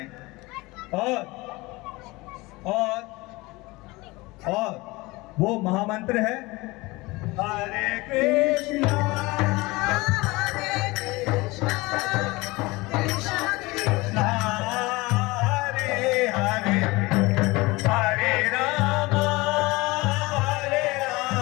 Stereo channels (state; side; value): quieter; right; 22.3 dB